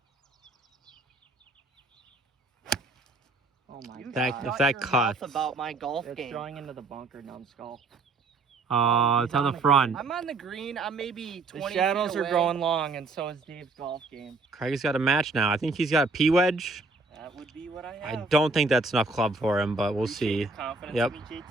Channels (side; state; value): left; quieter; 3.6 dB